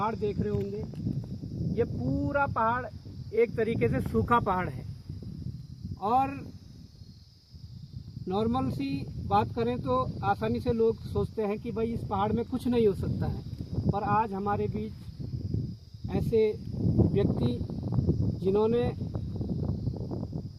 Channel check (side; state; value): both; identical; correlation 1.00